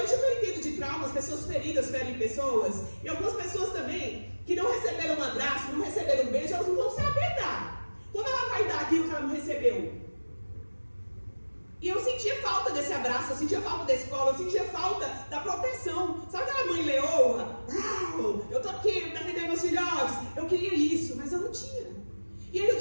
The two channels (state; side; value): inverted; both; correlation -1.00